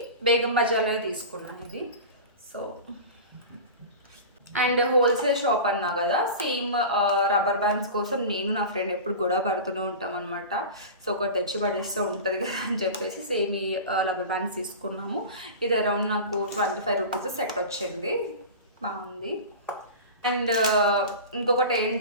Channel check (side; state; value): both; inverted; correlation -0.31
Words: బేగం బజార్లో తీసుకున్నాను ఇది. సో అండ్ హోల్సేల్ షాప్ అన్నా కదా, సేమ్ రబ్బర్ బ్యాండ్స్ కోసం నేను నా ఫ్రెండ్ ఎప్పుడు గొడవ పడుతూనే ఉంటాం అనమాట. సో ఒకటి తెచ్చి పడేస్తూ ఉంటుంది కదా అని చెప్పేసి సేమ్ ఈ రబ్బర్ బ్యాండ్స్ తీసుకున్నాము. ఇది అరౌండ్ నాకు 25 రూపీస్ సెట్ వచ్చింది, బాగుంది. అండ్ ఇంకొకటి